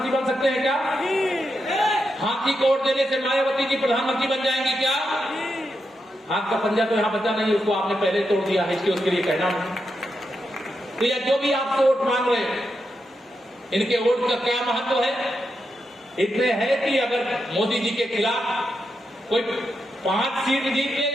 बन सकते हैं क्या? हाथी को वोट देने से मायावती जी प्रधानमंत्री बन जाएंगी क्या? हाथ का पंजा तो यहां बचा नहीं, उसको आपने पहले तोड़ दिया है, इसके उसके लिए कहना नहीं। तो यह जो भी आपसे वोट मांग रहे हैं, इनके वोट का क्या महत्व है? इतने है कि अगर मोदी जी के खिलाफ कोई 5 सीट जीत ले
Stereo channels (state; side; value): normal; both; correlation 0.85